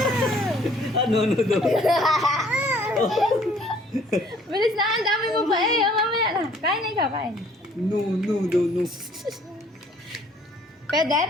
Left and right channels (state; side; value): normal; both; correlation 0.58